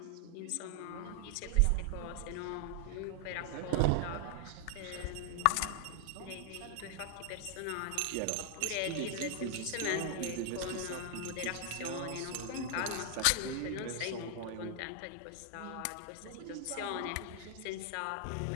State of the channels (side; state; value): both; different; correlation 0.00